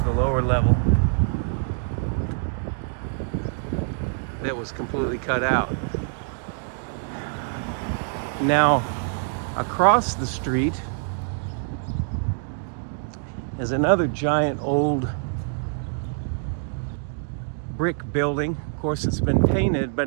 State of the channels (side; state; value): left; silent; 62 dB below the other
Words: the lower level that was completely cut out. Now, across the street is another giant old brick building. Of course, it's been painted,